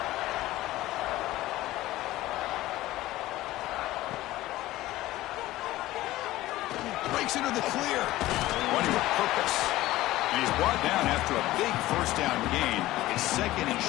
Breaks into the clear. Running with purpose. And he's brought down after a big first down gain. It's second and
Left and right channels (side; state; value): right; quieter; 16.5 dB